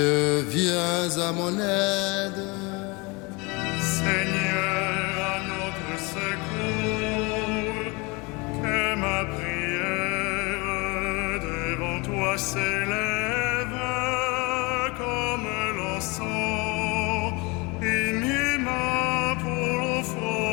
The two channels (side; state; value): right; quieter; 27.0 dB